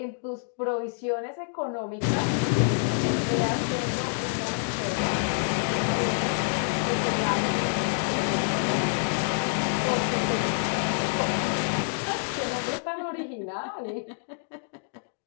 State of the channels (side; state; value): right; silent; digital silence